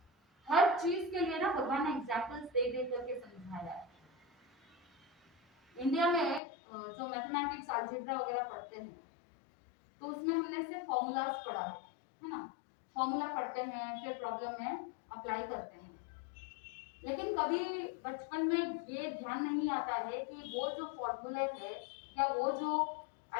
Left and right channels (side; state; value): right; drops out; at 6.4 s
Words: हर चीज के लिए ना भगवान ने एग्जाम्पल्स दे दे करके समझाया है। इंडिया में जो मैथमेटिक्स अलजेब्रा वगैरह पढ़ते हैं तो उसमें हमने सिर्फ फॉर्मूलाज पढ़ा है ना, फॉर्मूला पढ़ते हैं, फिर प्रॉब्लम में अप्लाई करते हैं। लेकिन कभी बचपन में ये ध्यान नहीं आता है कि वो जो फॉर्मूले है या वो जो